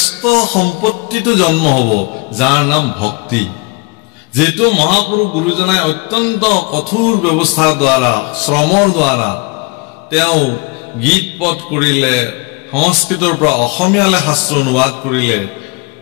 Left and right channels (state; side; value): quieter; right; 26.1 dB